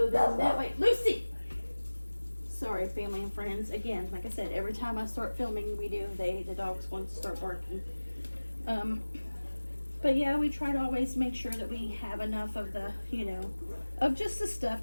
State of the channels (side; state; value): both; inverted; correlation -1.00